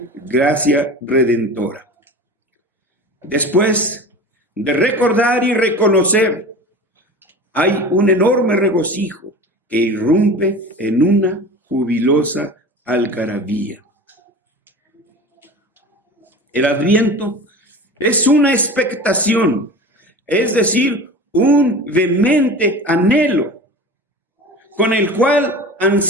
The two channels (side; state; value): both; normal; correlation 0.34